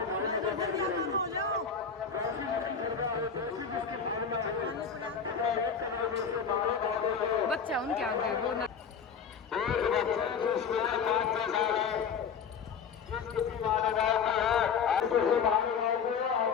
बच्चा उनके आगे वो ना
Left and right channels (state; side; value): quieter; right; 6.4 dB